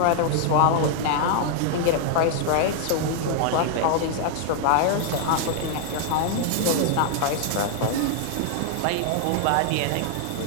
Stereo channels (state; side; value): different; both; correlation 0.00